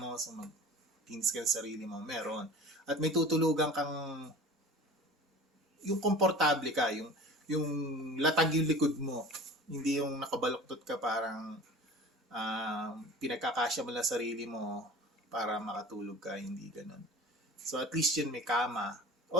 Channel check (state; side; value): normal; both; correlation 0.39